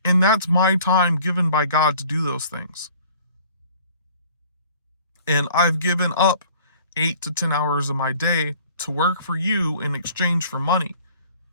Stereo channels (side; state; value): both; inverted; correlation -0.52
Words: And that's my time given by God to do those things. And I've given up 8 to 10 hours of my day to work for you in exchange for money,